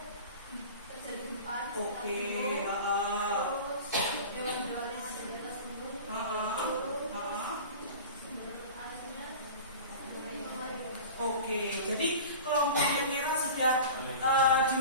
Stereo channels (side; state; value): both; inverted; correlation -0.36